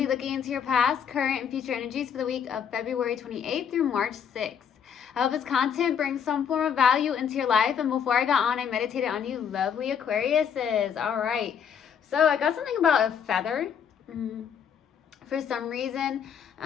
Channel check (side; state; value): right; quieter; 7.8 dB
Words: looking into your past, current, and future energies for the week of February 28th through March 6th. I hope this content brings some form of value into your life, and before I got on, I meditated on you lovely Aquariuses. All right, so I got something about a feather. For some reason.